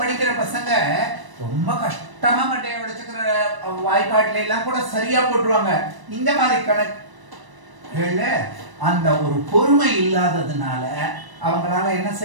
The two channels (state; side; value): late; left; 1.0 ms